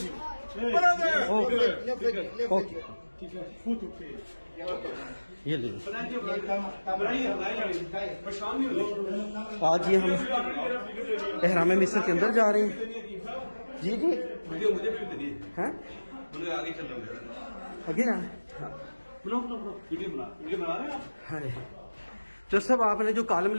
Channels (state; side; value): inverted; both; correlation -1.00